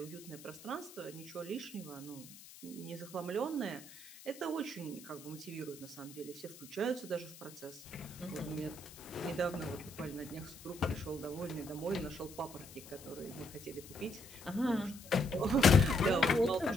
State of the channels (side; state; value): left; noise; hiss, 17 dB below the sound